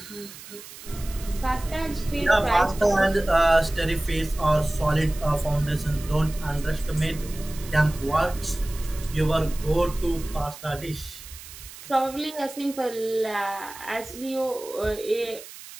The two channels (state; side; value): noise; right; hiss, 16 dB below the sound